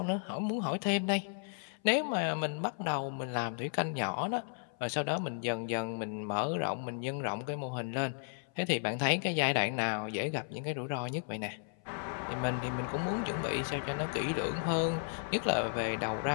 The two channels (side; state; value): right; silent; 55 dB below the other